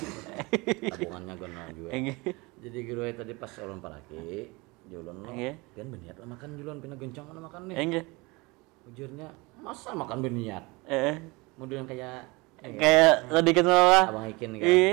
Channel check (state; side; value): quieter; left; 25.0 dB